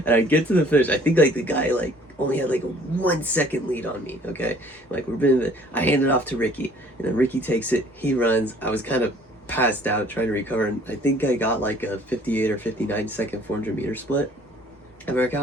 And I get to the finish. I think like the guy like only had like a 1 second lead on me. Okay, like I hand it off to Ricky, and then Ricky takes it. He runs. I was kind of passed out trying to recover, and I think I got like a 58 or 59 second 400 meter split. And America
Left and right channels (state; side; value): normal; both; correlation 0.55